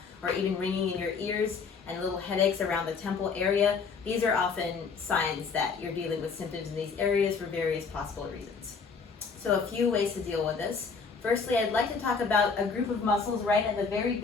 or even ringing in your ears and little headaches around the temple area, these are often signs that you're dealing with symptoms in these areas for various possible reasons. So a few ways to deal with this. Firstly, I'd like to talk about a group of muscles right at the very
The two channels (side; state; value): right; quieter; 5.2 dB